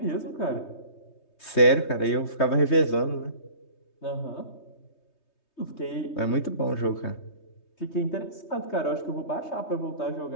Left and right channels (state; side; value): late; right; 3.2 ms